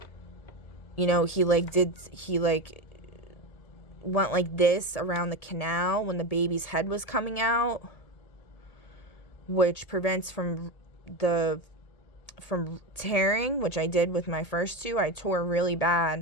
know, he went like this around the canal when the baby's head was coming out, which prevents from tearing, which I did with my first two. I tore really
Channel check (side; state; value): right; late; 1.8 ms